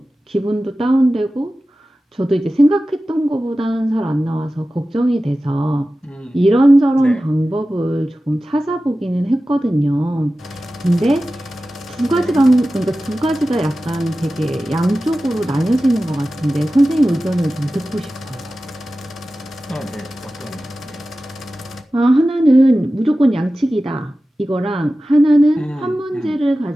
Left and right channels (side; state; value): both; normal; correlation 0.95